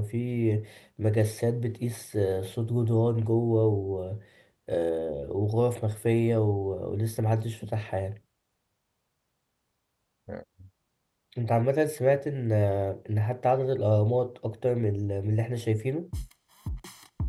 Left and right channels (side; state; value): both; identical; correlation 1.00